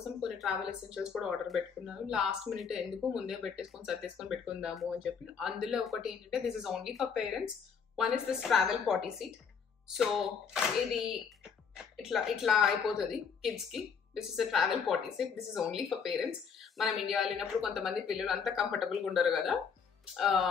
కొన్ని ట్రావెల్ ఎసెన్షియల్స్ కూడా ఆర్డర్ పెట్టుకున్నాను. లాస్ట్ మినిట్ ఎందుకు ముందే పెట్టేసుకొని సర్దేసుకొని పెట్టుకుందాము అని చెప్పి. అందులో ఒకటి ఏంటంటే this is only for parents. One is this travel party seat. So ఇది ఇట్లా అయిపోతుంది కిడ్స్ కి. This is a travel party seat. This is only for parents. మనం ఇండియా వెళ్ళినప్పుడు కొంతమంది పిల్లలు అంత కంఫర్టబుల్ గా ఉండరు కదా,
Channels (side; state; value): right; quieter; 6.4 dB